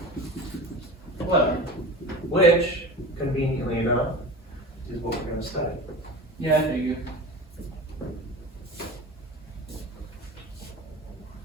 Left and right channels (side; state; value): both; normal; correlation 0.33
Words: Whatever. Which, conveniently enough, is what we're gonna study. Yeah, I figure.